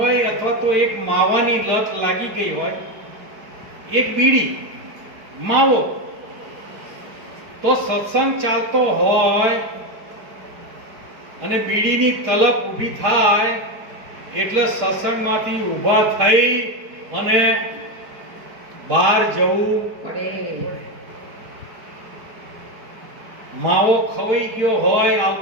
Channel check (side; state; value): left; late; 5.0 ms